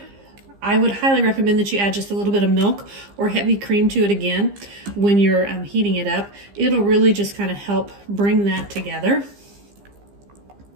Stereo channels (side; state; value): left; late; 15 ms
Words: I would highly recommend that you add just a little bit of milk or heavy cream to it again when you're heating it up. It'll really just kind of help bring that together,